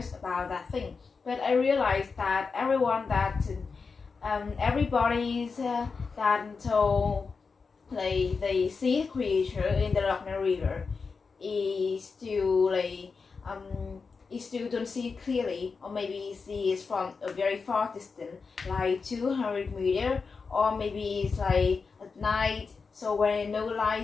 about that thing, but I realized that everybody's that told they see the creature in the Loch Ness River is still don't see it clearly, or maybe see it from a very far distance, 200 meters, or maybe it's at night. So when no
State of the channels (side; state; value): right; quieter; 4.9 dB